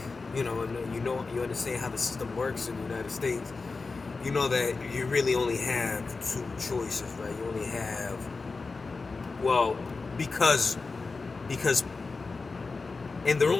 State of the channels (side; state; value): right; quieter; 4.1 dB